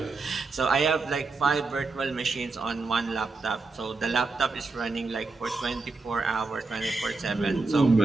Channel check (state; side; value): quieter; left; 3.9 dB